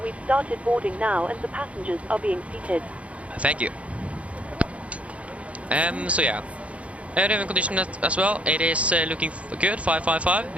We've started boarding now, and the passengers are being seated. Thank you. So yeah. Raven condition as well. It is looking good, 555.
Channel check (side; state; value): left; late; 0.064 ms